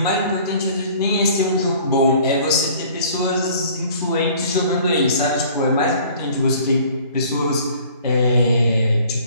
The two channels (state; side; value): inverted; both; correlation -0.52